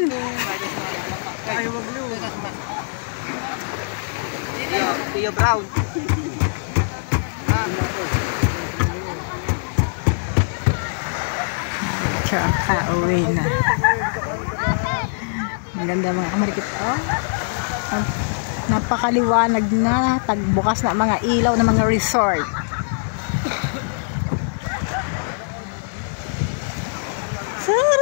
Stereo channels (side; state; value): right; silent; digital silence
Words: Ayaw mag-blue. Tio Brown. Tsaka uwi na. Maganda mga kamarikit. Oh. Napakaliwanag na. Tagbukas na mga ilaw ng mga resort.